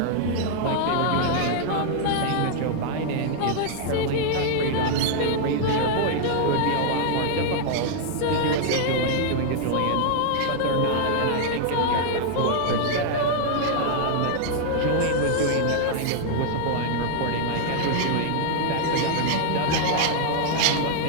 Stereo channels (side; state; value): both; different; correlation 0.00